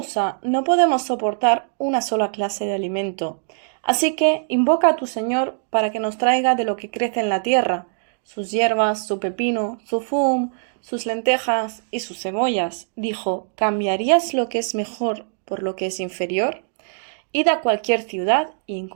no podemos soportar una sola clase de alimento, así que invoca a tu Señor para que nos traiga de lo que crece en la tierra, sus hierbas, su pepino, su fum, sus lentejas y sus cebollas. Dijo, ¿cambiarías lo que es mejor por lo que es inferior? Id a cualquier ciudad y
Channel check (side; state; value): left; silent; digital silence